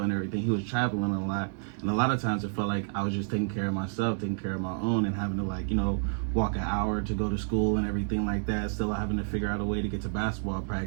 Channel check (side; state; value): left; silent; digital silence